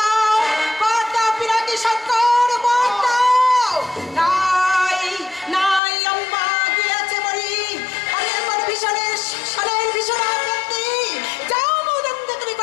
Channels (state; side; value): drops out; right; at 5.8 s